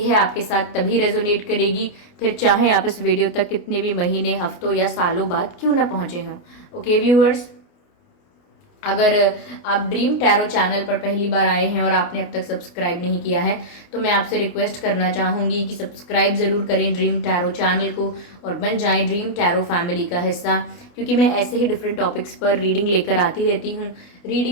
आपके साथ तभी रेजोनेट करेगी, फिर चाहे आप इस वीडियो तक कितने भी महीने, हफ्तों या सालों बाद क्यों ना पहुंचे हों। ओके व्यूअर्स, अगर आप ड्रीम टैरो चैनल पर पहली बार आए हैं और आपने अब तक सब्सक्राइब नहीं किया है, तो मैं आपसे रिक्वेस्ट करना चाहूंगी कि सब्सक्राइब ज़रूर करें ड्रीम टैरो चैनल को और बन जाएं ड्रीम टैरो फैमिली का हिस्सा, क्योंकि मैं ऐसे ही डिफरेंट टॉपिक्स पर रीडिंग लेकर आती रहती हूँ।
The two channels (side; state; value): right; late; 29 ms